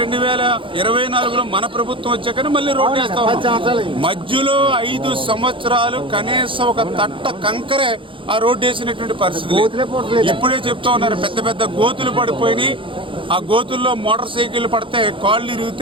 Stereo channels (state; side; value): late; left; 0.25 ms